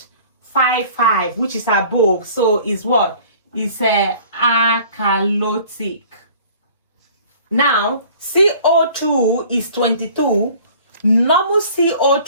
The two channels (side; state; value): both; inverted; correlation -0.49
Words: which is above. So is what? It's alkalotic. Now, CO2 is 22. Normal